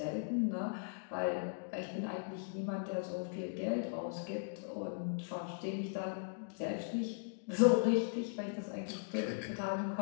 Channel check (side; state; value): right; silent; digital silence